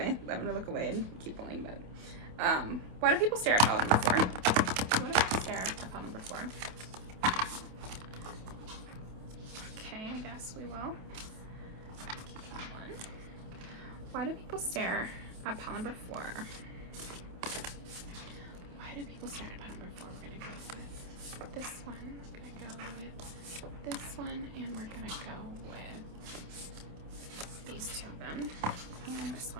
I'm gonna look away and keep pulling, but why do people stare at pile number 4? Why do people stare at pile number 4? Okay, I guess we will keep that one. Why do people stare at pile number 4? Why do people stare at pile number 4? We're gonna go with this one, we're gonna go with this one, and we're gonna go with these 2 of them, and this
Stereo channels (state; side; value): late; left; 27 ms